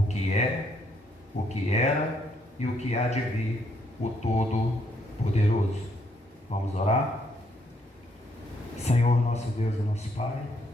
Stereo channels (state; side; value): normal; both; correlation 0.72